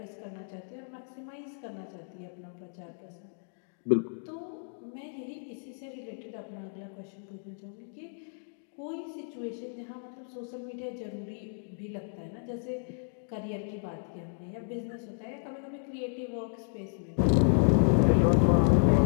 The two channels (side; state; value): right; silent; digital silence